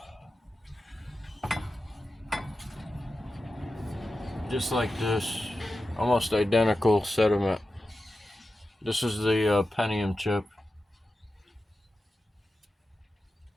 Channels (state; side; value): normal; both; correlation 0.92